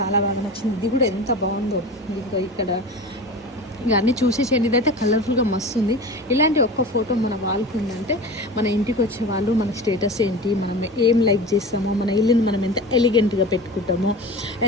బాగా నచ్చింది. ఇది కూడా ఎంత బాగుందో. ఇక్కడ ఇక అన్నీ చూసేసేయండి. ఇదైతే కలర్ఫుల్గా మస్తు ఉంది. ఇలాంటి ఒక్క ఫోటో మన వాళ్ళకు ఉందంటే మన ఇంటికి వచ్చే వాళ్ళు మన స్టేటస్ ఏంటి, మనం ఏం లైక్ చేస్తామో, మన ఇల్లుని మనం ఎంత ఎలిగెంట్గా పెట్టుకుంటామో,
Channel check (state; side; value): normal; both; correlation 0.33